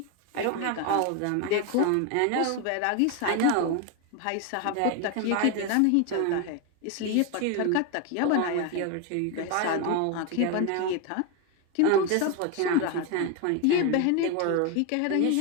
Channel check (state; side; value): different; both; correlation 0.02